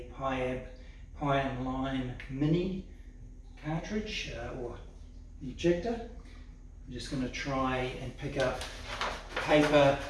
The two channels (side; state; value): both; identical; correlation 1.00